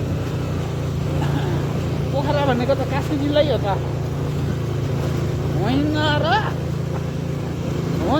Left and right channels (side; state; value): both; identical; correlation 1.00